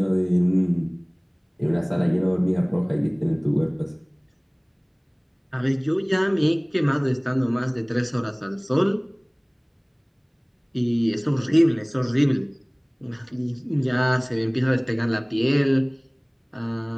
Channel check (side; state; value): both; identical; correlation 1.00